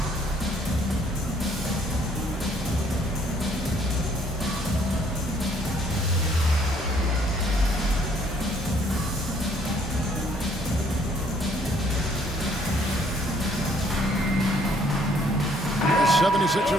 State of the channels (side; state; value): both; normal; correlation 0.64